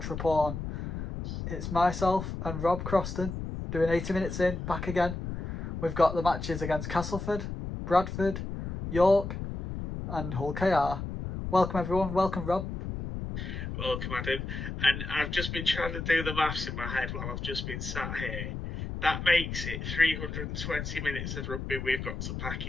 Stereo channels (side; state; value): left; noise; rumble, 5 dB below the sound